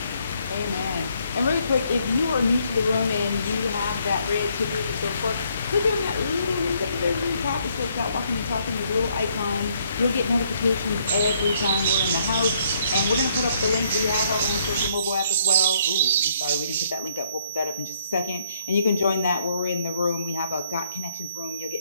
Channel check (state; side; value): inverted; both; correlation -0.69